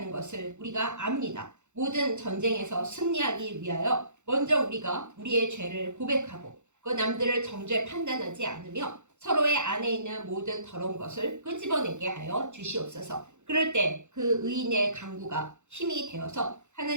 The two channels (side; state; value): left; late; 0.84 ms